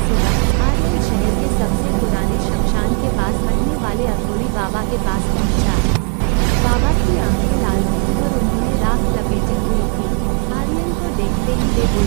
सुबह आर्यन शहर के सबसे पुराने शमशान के पास रहने वाले अघोरी बाबा के पास पहुंचा। बाबा की आंखें लाल थीं और उन्होंने राख लपेटी हुई थी। आर्यन को देखते ही वे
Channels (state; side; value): quieter; left; 34.6 dB